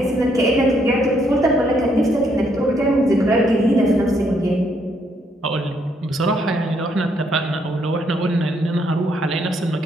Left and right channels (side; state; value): both; normal; correlation 0.72